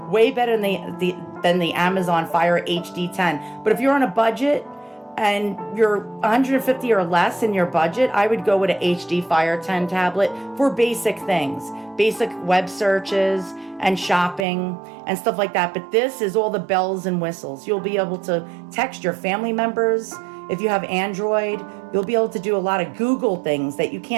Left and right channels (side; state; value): left; drops out; at 14.5 s